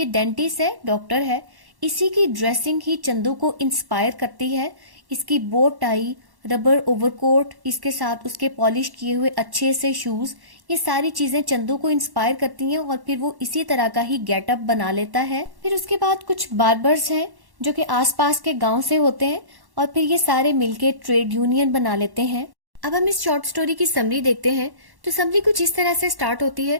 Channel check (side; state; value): left; late; 1.1 ms